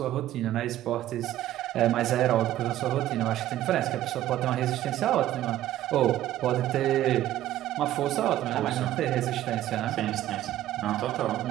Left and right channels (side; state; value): left; quieter; 13.5 dB